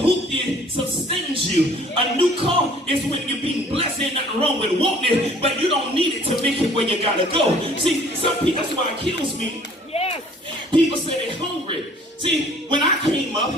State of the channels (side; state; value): both; normal; correlation 0.53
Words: sustains you. A new car is when you're being blessed. Ain't nothing wrong with wanting it, but you don't need it to make it where you gotta go. See, some people, that's why it kills me. Yes. People say they're hungry. See, when I came up,